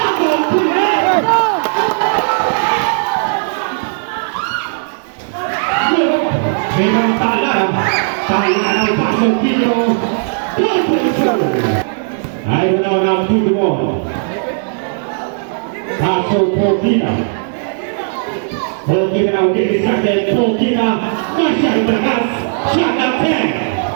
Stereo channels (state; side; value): silent; left; digital silence